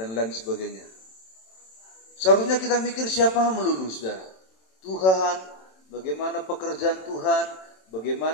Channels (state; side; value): late; right; 27 ms